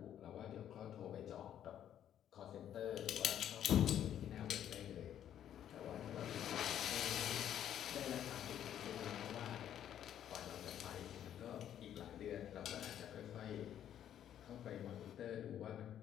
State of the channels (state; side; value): quieter; right; 10.4 dB